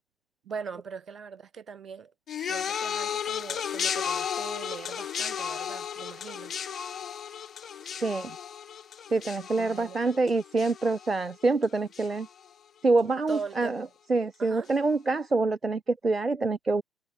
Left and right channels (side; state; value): both; normal; correlation 0.83